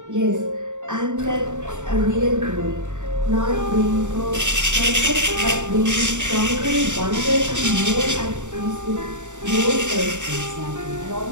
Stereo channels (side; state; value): left; late; 0.85 ms